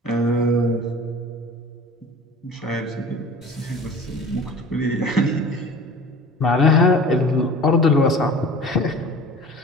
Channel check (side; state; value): both; normal; correlation 0.41